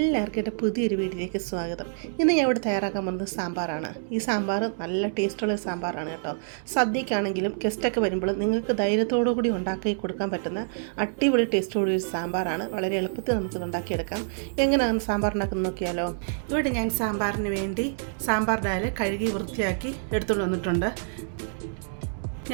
എൻ്റെ പുതിയൊരു വീട്ടിലേക്ക് സ്വാഗതം. ഇന്ന് ഞാൻ ഇവിടെ തയ്യാറാക്കാൻ പോകുന്നത് സാമ്പാറാണ്. ഈ സാമ്പാർ നല്ല ടേസ്റ്റുള്ള സാമ്പാറാണ് കേട്ടോ. സദ്യക്കാണെങ്കിലും ഗസ്റ്റൊക്കെ വരുമ്പോൾ നിങ്ങൾക്ക് ധൈര്യത്തോടു കൂടി ഉണ്ടാക്കി കൊടുക്കാൻ പറ്റുന്ന അടിപൊളി ടേസ്റ്റോടെ ഒരു സാമ്പാറാണ്. വളരെ എളുപ്പത്തിൽ നമുക്കിത് ഉണ്ടാക്കിയെടുക്കാം. എങ്ങനെയാണ് സാമ്പാർ ഉണ്ടാക്കുന്നത് നോക്കിയാലോ. ഇവിടെ ഞാൻ സാമ്പാറിന് വേണ്ടി സാമ്പാർ ഡാൽ കഴുകി വൃത്തിയാക്കി എടുത്തുകൊണ്ട് വന്നിട്ടുണ്ട്.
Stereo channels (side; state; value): left; silent; digital silence